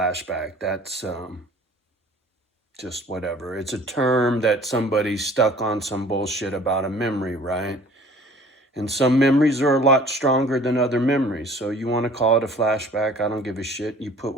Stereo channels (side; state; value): both; normal; correlation 0.50